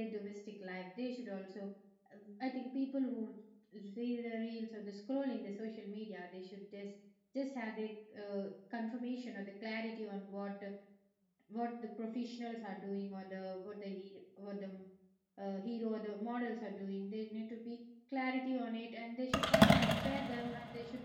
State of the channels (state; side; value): identical; both; correlation 1.00